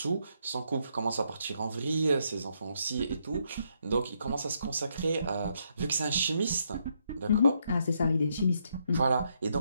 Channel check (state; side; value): inverted; both; correlation -0.76